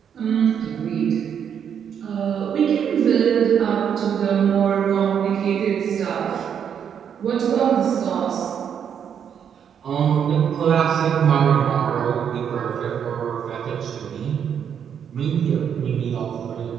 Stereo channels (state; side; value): quieter; left; 8.1 dB